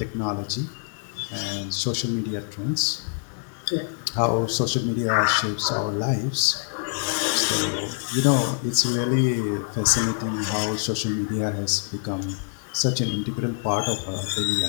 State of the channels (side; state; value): right; silent; digital silence